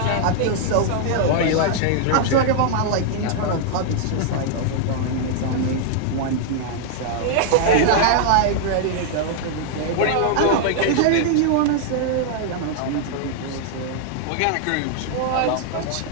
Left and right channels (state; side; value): different; both; correlation -0.01